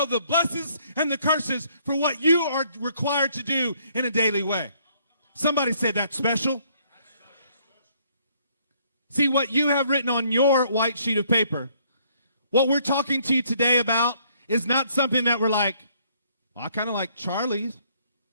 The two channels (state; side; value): inverted; both; correlation -0.65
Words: the blessings and the curses for what you are required to do in a daily way. Somebody say that's special. See, what you have written on your white sheet of paper, what we're talking to you today about is not something that we're like, well, I kind of like Charlie's.